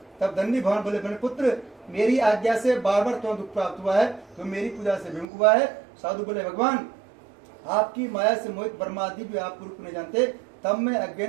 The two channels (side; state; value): left; drops out; at 5.2 s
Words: तब दंडी भगवान बोले मेरे पुत्र मेरी आज्ञा से बार बार तुम्हें दुख प्राप्त हुआ है, तो मेरी पूजा से विमुख हुआ है। साधु बोले भगवान आपकी माया से मोहित ब्रह्मादि भी आप रूप नहीं जानते, तब मैं